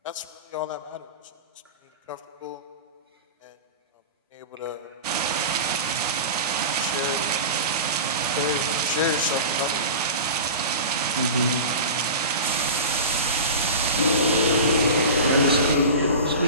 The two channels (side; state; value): both; inverted; correlation -0.30